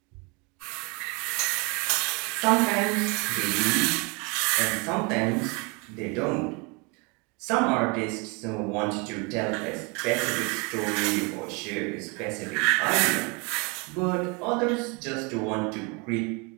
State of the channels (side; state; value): left; quieter; 30.2 dB